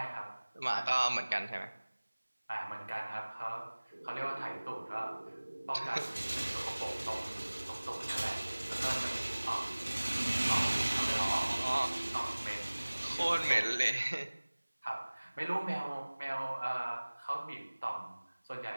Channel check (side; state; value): both; inverted; correlation -1.00